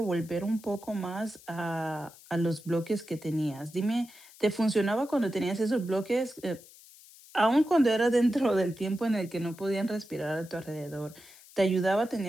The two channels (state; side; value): noise; left; hiss, 22 dB below the sound